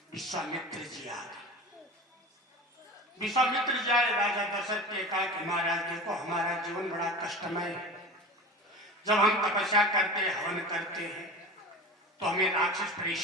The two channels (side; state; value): both; normal; correlation 0.34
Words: विश्वामित्र जी आ गए। विश्वामित्र जी आए, राजा दशरथ ने कहा कि महाराज देखो हमारा जीवन बड़ा कष्टमय है। जब हम तपस्या करते हैं, हवन करते हैं, तो हमें राक्षस